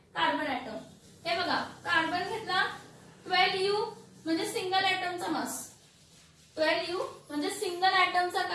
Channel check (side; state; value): both; identical; correlation 1.00